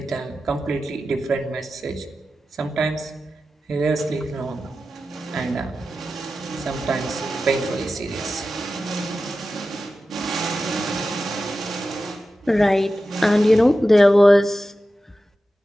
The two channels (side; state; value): both; normal; correlation 0.93